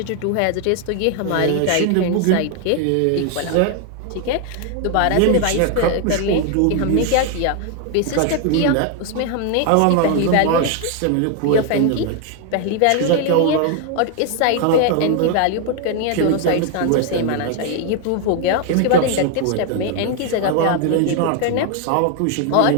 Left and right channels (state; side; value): different; both; correlation 0.01